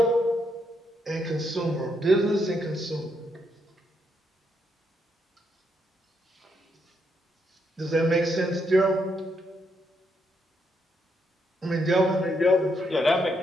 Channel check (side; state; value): both; normal; correlation 0.78